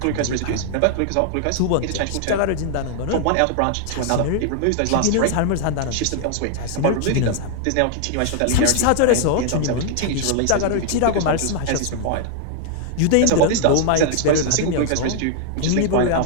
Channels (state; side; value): different; both; correlation 0.00